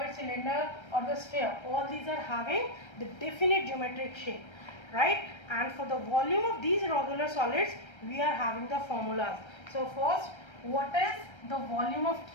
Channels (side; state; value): right; late; 1.3 ms